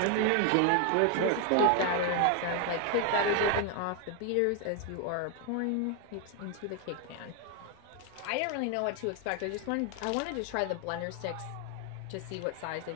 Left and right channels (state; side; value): different; both; correlation 0.01